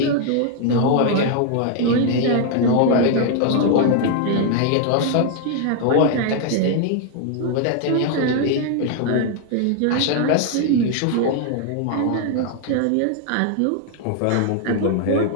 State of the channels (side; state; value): both; different; correlation 0.00